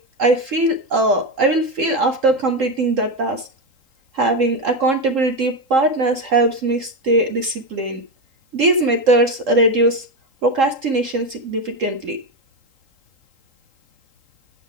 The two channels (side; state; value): left; late; 3.8 ms